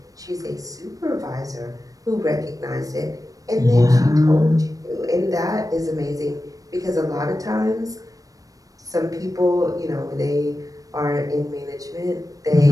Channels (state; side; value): late; left; 0.17 ms